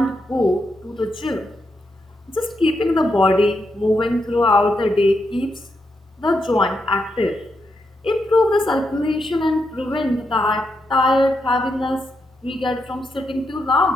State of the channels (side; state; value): both; normal; correlation 0.83